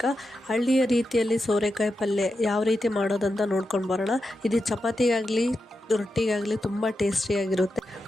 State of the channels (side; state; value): both; normal; correlation 0.88